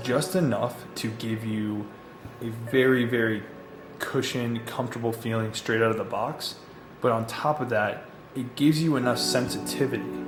enough to give you a very cushioned, comfortable feeling straight out of the box. But on top of that, it gives you enough sensitivity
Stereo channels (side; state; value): both; identical; correlation 1.00